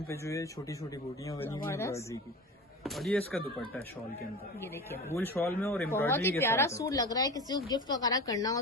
पे जो है छोटी छोटी बूटियां बनी हुई जबरदस्त। एम्ब्रॉयडरी की, और ये इसका दुपट्टा है शॉल के अंदर, ये देखिए वूल शॉल में और बहुत ही एम्ब्रॉयडरी के प्यारा साथ है। सूट लग रहा है, किसी को गिफ्ट वगैरह करना हो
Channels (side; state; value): both; normal; correlation 0.31